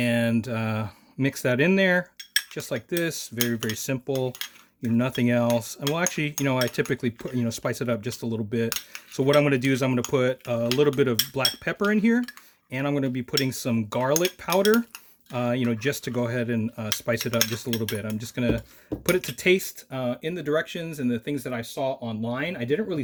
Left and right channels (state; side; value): identical; both; correlation 1.00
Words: mix that in there, just like this. Very, very simple. You know, nothing else. And well, actually, you know, I typically put, you know, spice it up just a little bit. So what I'm going to do is I'm going to put a little bit of black pepper in here, and I'm going to be putting some garlic powder, you know, just to go ahead and spice it up just a little bit. I'm just going to put it to taste in the directions and the things that I saw online. I didn't really